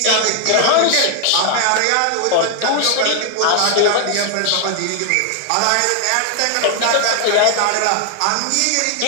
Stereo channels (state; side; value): different; both; correlation 0.00